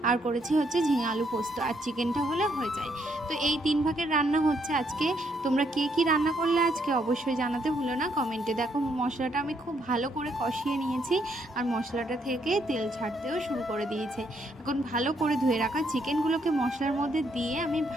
আর করেছি হচ্ছে ঝিঙে আলু পোস্ত, আর চিকেনটা হলে হয়ে যায়। তো এই 3 ভাগের রান্না হচ্ছে আজকে। তোমরা কে কী রান্না করলে আজকে অবশ্যই জানাতে ভুলো না কমেন্টে। দেখো, মশলাটা আমি খুব ভালো করে কষিয়ে নিয়েছি আর মশলাটা থেকে তেল ছাড়তেও শুরু করে দিয়েছে। এখন ভালো করে ধুয়ে রাখা চিকেনগুলোকে মশলার মধ্যে দিয়ে আমি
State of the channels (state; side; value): normal; both; correlation 0.73